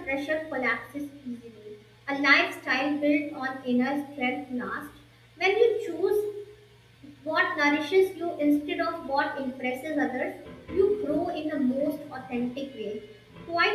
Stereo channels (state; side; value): identical; both; correlation 1.00